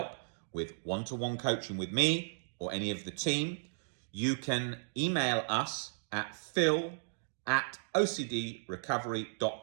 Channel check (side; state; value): left; silent; digital silence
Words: with one-to-one coaching with me or any of the team, you can email us at